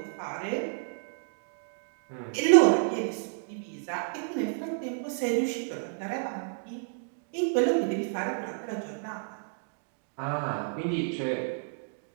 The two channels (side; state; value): left; silent; digital silence